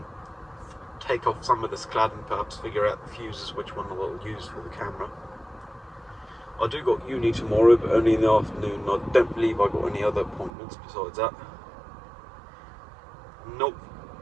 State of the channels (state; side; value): drops out; left; at 10.5 s